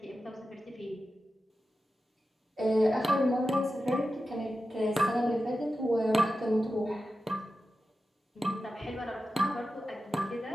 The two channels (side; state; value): both; normal; correlation 0.92